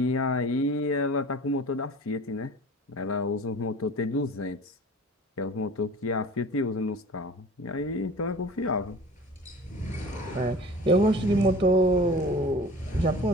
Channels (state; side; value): normal; both; correlation 0.41